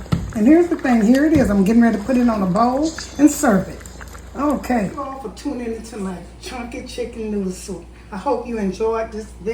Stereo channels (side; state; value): both; identical; correlation 1.00